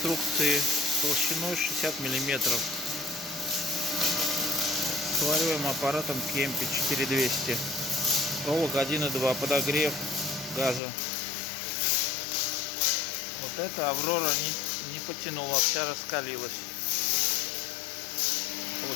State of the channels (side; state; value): right; drops out; at 10.8 s